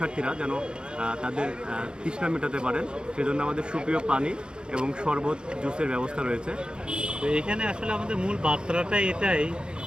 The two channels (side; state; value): left; late; 0.050 ms